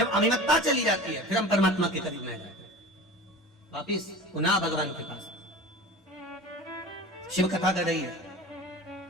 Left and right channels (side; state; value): both; normal; correlation 0.35